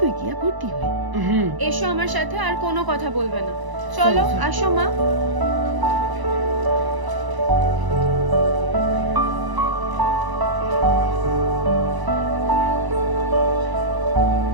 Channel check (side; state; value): left; late; 1.0 ms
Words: গিয়া ভর্তি হয়ে। এসো আমার সাথে, আর কোনো কথা বলবে না। চলো, চলো। আসো মা।